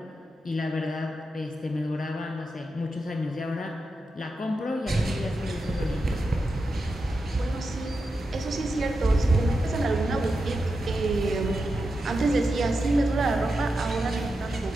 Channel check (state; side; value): normal; both; correlation 0.89